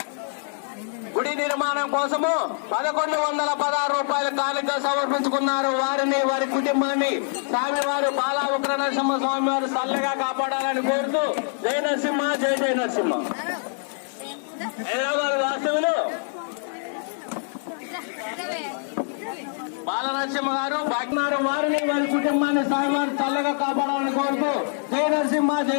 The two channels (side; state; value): right; silent; 62 dB below the other